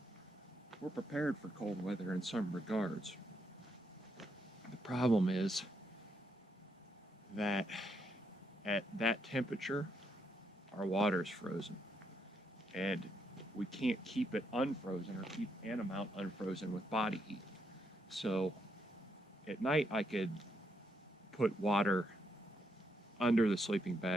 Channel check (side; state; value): both; normal; correlation 0.78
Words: we're prepared for cold weather in some regards. The problem is that at that temperature, our water is frozen. And we can't keep it unfrozen or keep an amount unfrozen with body heat. So at night I could put water under the sleeping